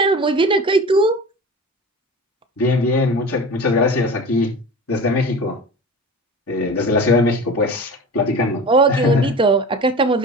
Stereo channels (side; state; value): both; normal; correlation 0.35